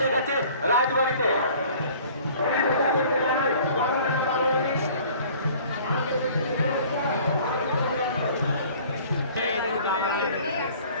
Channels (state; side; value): inverted; both; correlation -0.50